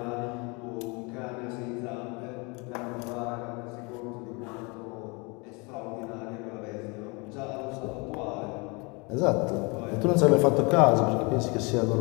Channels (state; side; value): quieter; right; 29.6 dB